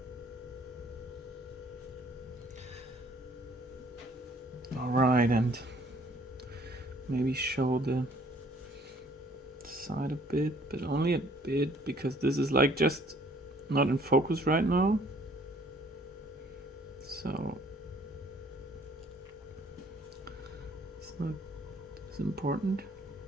All right, and maybe show the side a bit, but only a bit, because this is like just not in focus right now. So it's not as important.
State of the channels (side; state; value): both; normal; correlation 0.58